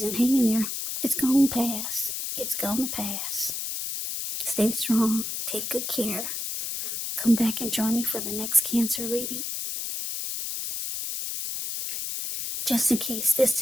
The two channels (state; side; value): noise; left; hiss, 4 dB below the sound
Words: Hang in there. It's going to pass. It's going to pass. Stay strong. Take good care. Come back and join me for the next Cancer reading. Just in case this